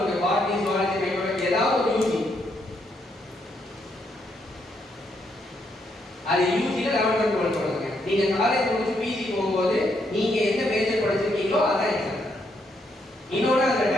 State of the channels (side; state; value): both; normal; correlation 0.76